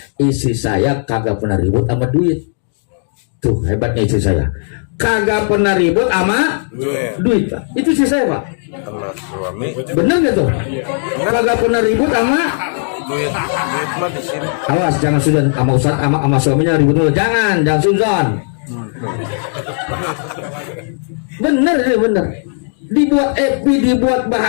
Istri saya kagak pernah ribut sama duit. Tuh hebatnya istri saya, kagak pernah ribut sama duit Pak. Itu istri saya Pak. Sama suami. Bener gak tuh? Kagak pernah ribut sama Duit mah di sini. awas jangan sudah sama ustaz sama suaminya ribut dulu. Jangan suzon. Bener. Dibuat happy, dibuat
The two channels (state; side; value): silent; right; digital silence